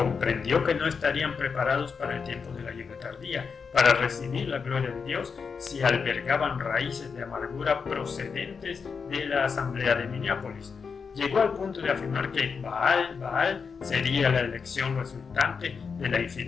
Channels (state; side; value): quieter; right; 5.6 dB